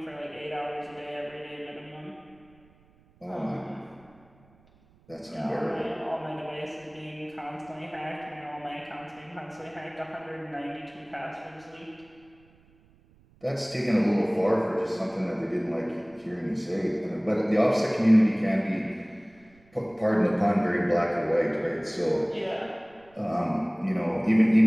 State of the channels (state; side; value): noise; right; rumble, 30 dB below the sound